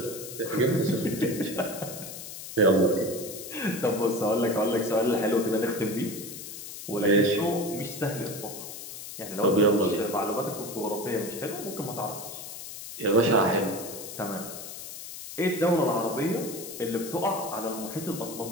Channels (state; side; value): noise; left; hiss, 10 dB below the sound